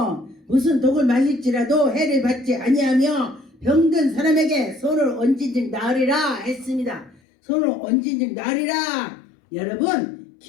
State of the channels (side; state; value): right; drops out; at 7.2 s